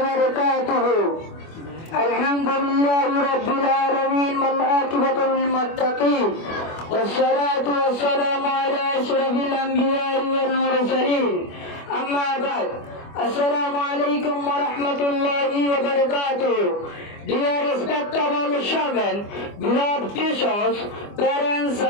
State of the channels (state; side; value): late; right; 25 ms